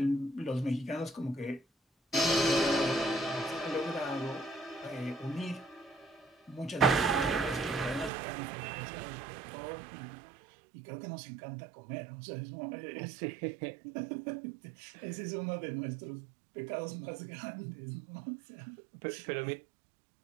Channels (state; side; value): drops out; left; at 8.1 s